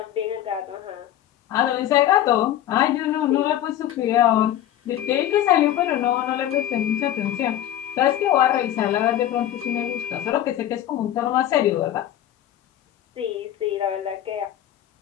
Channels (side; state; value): right; quieter; 12.1 dB